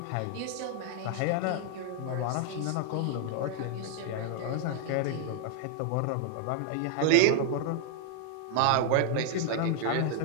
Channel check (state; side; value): different; both; correlation 0.00